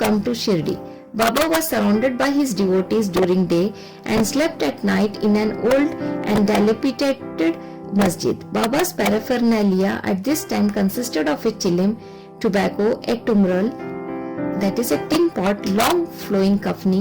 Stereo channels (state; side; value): identical; both; correlation 1.00